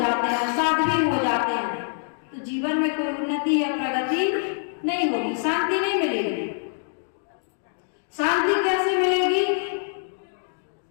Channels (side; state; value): right; silent; digital silence